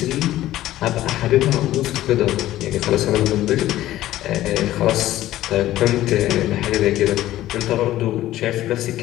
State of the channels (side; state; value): right; quieter; 14.5 dB